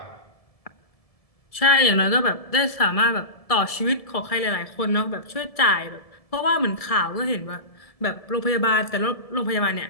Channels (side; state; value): right; late; 1.7 ms